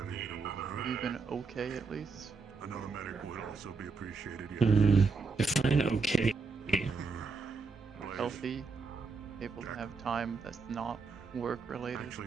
hitter would hurt. You've been okay at least. Another medic would also be appreciated. Yeah. Define okay. Healthy, able to have time that's not work related.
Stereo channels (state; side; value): quieter; left; 4.5 dB